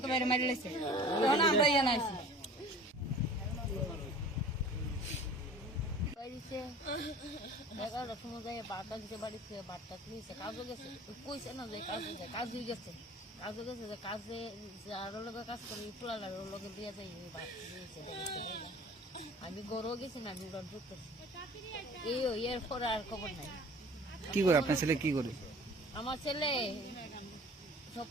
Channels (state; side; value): normal; both; correlation 0.45